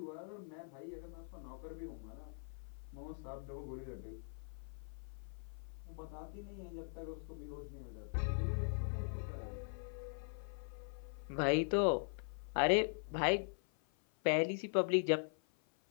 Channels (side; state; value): right; silent; 50 dB below the other